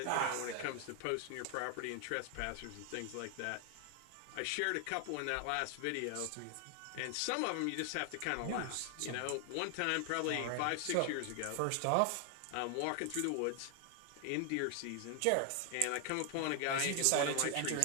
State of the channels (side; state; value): both; different; correlation 0.00